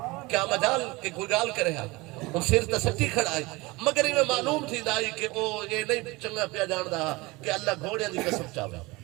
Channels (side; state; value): left; quieter; 22.9 dB